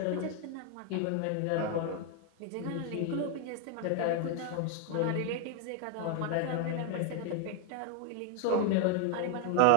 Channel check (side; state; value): both; different; correlation 0.01